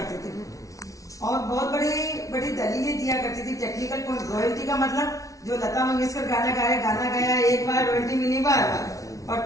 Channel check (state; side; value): late; right; 0.17 ms